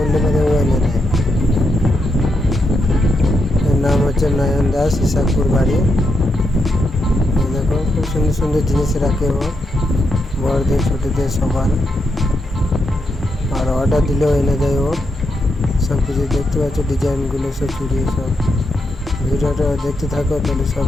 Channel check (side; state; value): both; normal; correlation 0.83